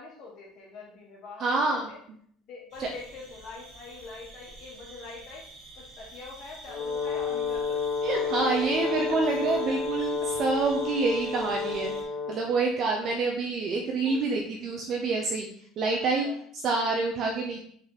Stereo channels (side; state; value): both; normal; correlation 0.54